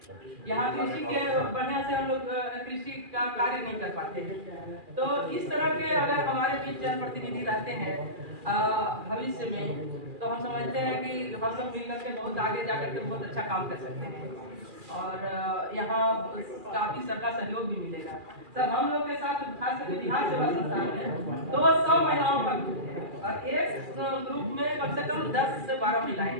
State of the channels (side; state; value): left; late; 2.4 ms